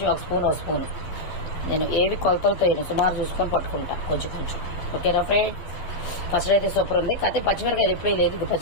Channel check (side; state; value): right; late; 12 ms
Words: ఒక స్పూన్. నేను ఏవి కొలతలతో వేయను, సుమారు చూసుకొని పట్టుకుంటా కొంచెం. ఓకేనా ఫ్రెండ్? ఫస్ట్ అయితే సూపర్ ఉంది. కాకపోతే పచ్చిమిరకాయలు ఎప్పుడూ లేదు, ఇది